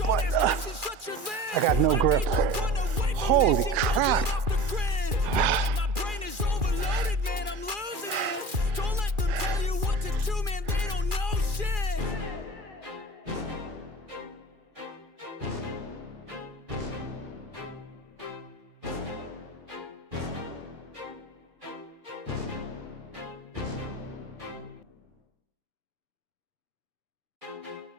but I got no grip. Holy crap. My brain is overloaded, man, I'm losing it. Don't let them tell you what to do, man, they don't know shit.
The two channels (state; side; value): late; left; 2.4 ms